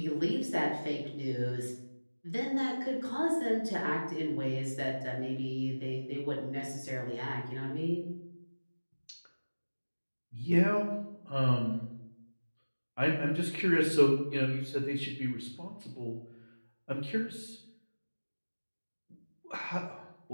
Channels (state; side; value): inverted; both; correlation -1.00